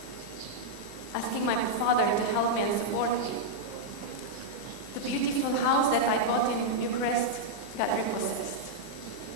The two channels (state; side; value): late; right; 40 ms